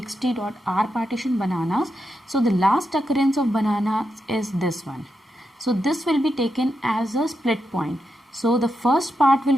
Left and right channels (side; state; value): both; normal; correlation 0.85